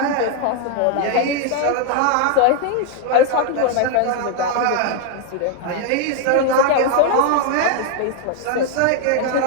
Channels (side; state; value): both; different; correlation 0.00